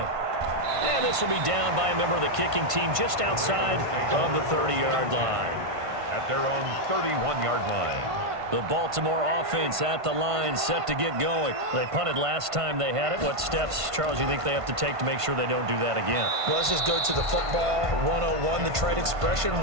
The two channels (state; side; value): late; left; 1.5 ms